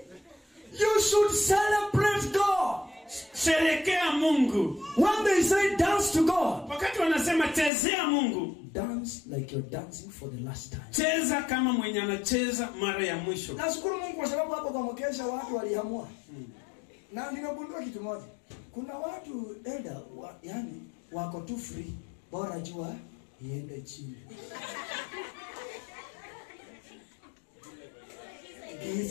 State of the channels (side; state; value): right; drops out; at 7.7 s